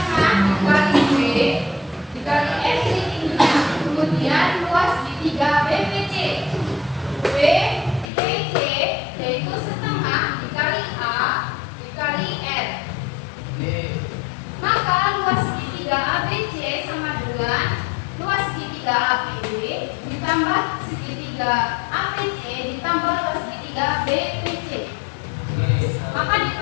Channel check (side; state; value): right; drops out; at 8.1 s